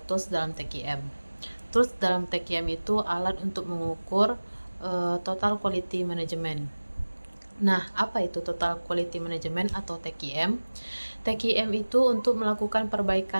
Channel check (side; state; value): both; inverted; correlation -1.00